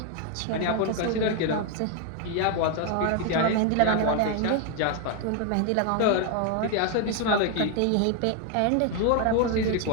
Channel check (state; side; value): different; both; correlation 0.01